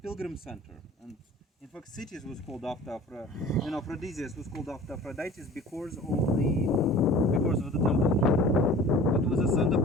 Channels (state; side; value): normal; both; correlation 0.44